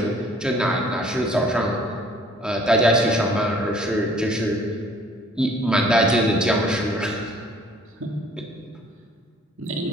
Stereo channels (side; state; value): both; normal; correlation 0.56